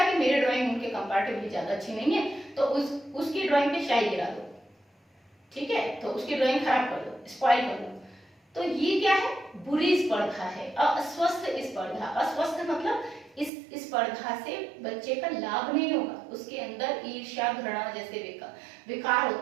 कि मेरी ड्राइंग उनके कंपैरेटिवली ज्यादा अच्छी नहीं है, तो उसकी ड्राइंग पे शाई गिरा दो, ठीक है, तो उसकी ड्राइंग खराब कर दो, स्पॉइल कर दो। तो ये क्या है, बुरी स्पर्धा है, अस्वस्थ स्पर्धा। अस्वस्थ मतलब इस स्पर्धा से बच्चे का लाभ नहीं होगा, उसके अंदर ईर्ष्या, घृणा जैसे विकार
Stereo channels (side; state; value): left; drops out; at 13.5 s